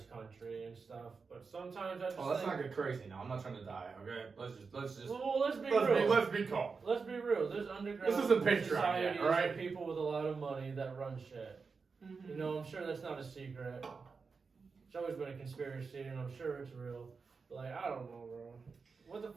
country and stuff, but sometimes I just Oh, let's think, not get crazy now. I'm not trying to die. Okay, let's just well, let's be real. let's be calm. Let's be real. There's underground This isn't Patreon yet, societies alright? of people with a lot of money that run shit. Mhm. You know, I'm sure that's not a secret. It's always been a conspiracy, and I'm sure it's real. But like, I don't know, bro. What the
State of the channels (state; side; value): quieter; left; 4.9 dB